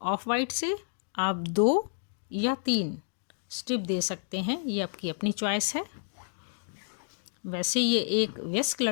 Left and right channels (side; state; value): right; silent; digital silence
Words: ऑफ वाइट से आप 2 या 3 स्ट्रिप दे सकते हैं, ये आपकी अपनी चॉइस है। वैसे ये एक वयस्क